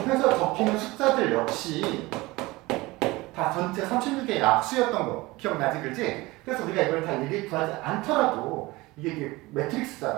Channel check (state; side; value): quieter; left; 21.2 dB